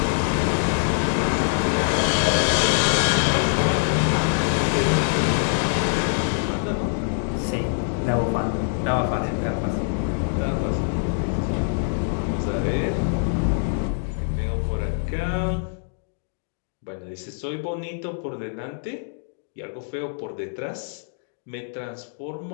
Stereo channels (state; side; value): silent; right; digital silence